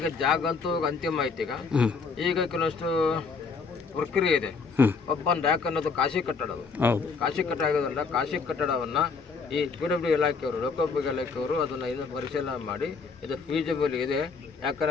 ಜಾಗ ಅಂತೂ ಅಂತಿಮ ಆಯ್ತು. ಈಗ ಕೆಲವಷ್ಟು ಪ್ರಕ್ರಿಯೆ ಇದೆ. ಒಬ್ಬನ್ ರ್ಯಾಕ್ ಅನ್ನೋದು ಖಾಸಗಿ ಕಟ್ಟಡ. ಖಾಸಗಿ ಕಟ್ಟಡ ಆಗೋದ್ರಿಂದ ಖಾಸಗಿ ಕಟ್ಟಡವನ್ನು ಈ PWD ಇಲಾಖೆಯವರು, ಲೋಕೋಪಯೋಗಿ ಇಲಾಖೆಯವರು ಅದನ್ನು ಇನ್ನು ಪರಿಶೀಲನೆ ಮಾಡಿ ಇದು ಫೀಸಿಬಲ್ ಇದೆ.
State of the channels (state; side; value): quieter; right; 4.9 dB